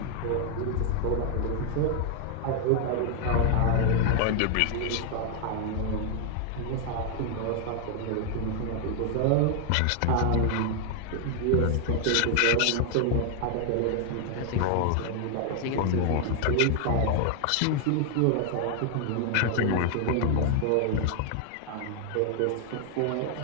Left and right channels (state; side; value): different; both; correlation 0.00